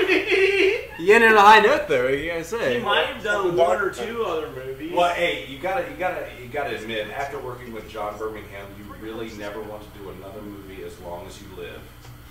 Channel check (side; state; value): both; identical; correlation 1.00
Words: You ended on a high note, though. What you gotta say? He might have done one or two other movies. Well, hey, you gotta admit, after working with John Birmingham, you really never want to do another movie as long as you live.